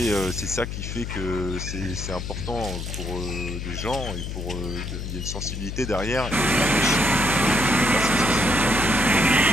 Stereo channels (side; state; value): left; noise; hum, 6 dB below the sound